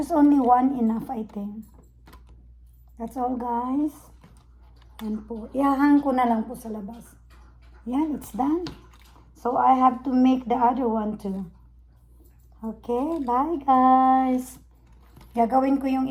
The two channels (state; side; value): identical; both; correlation 1.00